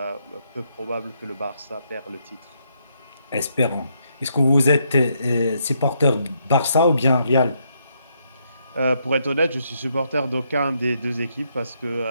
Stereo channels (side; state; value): both; inverted; correlation -0.76